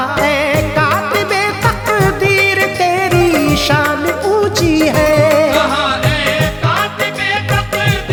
ऐ कातिबे तकदीर तेरी शान ऊंची है। कहा ऐ कातिबे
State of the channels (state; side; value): identical; both; correlation 1.00